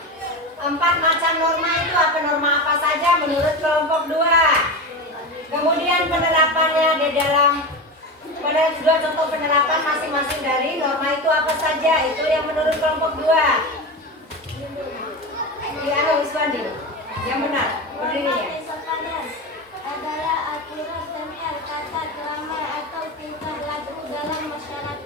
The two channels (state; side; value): normal; both; correlation 0.23